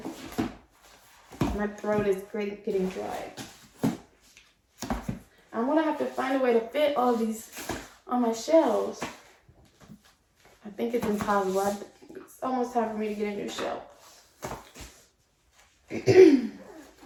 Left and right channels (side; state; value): both; identical; correlation 1.00